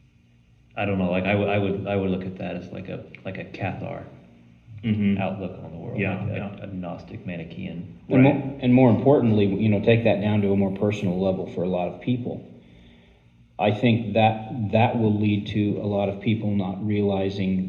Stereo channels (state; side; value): identical; both; correlation 1.00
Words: I don't know. Like I would look at that as like a Cathar outlook on the world, Yeah, like yeah. a Gnostic Manichaean. And more importantly, take that down to a more personal level for a lot of people. I think that will lead to a lot of people not